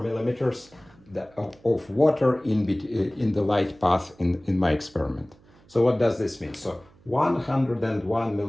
of water in the light path in my experiment. So what does this mean? So 101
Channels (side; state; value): right; noise; hum, 28 dB below the sound